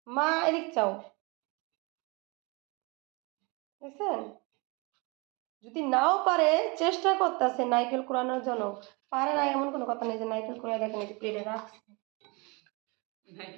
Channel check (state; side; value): quieter; left; 28.4 dB